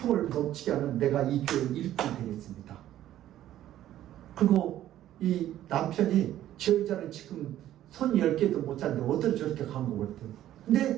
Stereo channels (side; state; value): left; quieter; 12.7 dB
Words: 멈추게 하면 내가 이 교회 일꾼이 되겠습니다. 그리고 이 남편이 저 여자는 지금 손 10개도 못 잡는데 어떻게 저렇게 간 거 같아요.